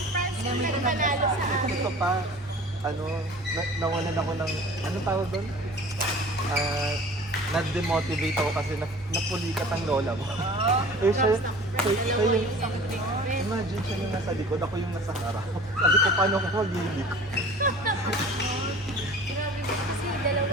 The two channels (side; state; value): both; normal; correlation 0.43